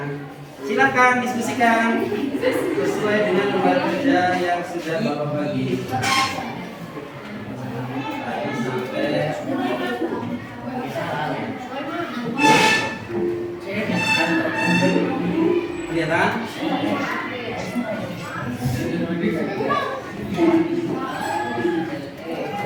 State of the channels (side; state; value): both; identical; correlation 1.00